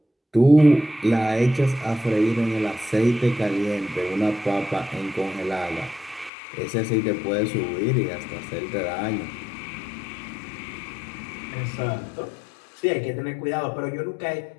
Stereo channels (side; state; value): right; drops out; at 6.3 s